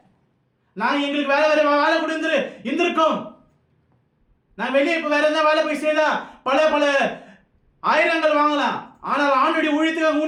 நான் எங்களுக்கு வேலை கொடுத்து இருந்திருக்கோம். நான் வெளியே இப்ப வேற எதாவது வேலை போய் செய்தா பல ஆயிரங்கள் வாங்கலாம். ஆனால் ஆண்டுடைய ஊழியத்துக்கு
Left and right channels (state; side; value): identical; both; correlation 1.00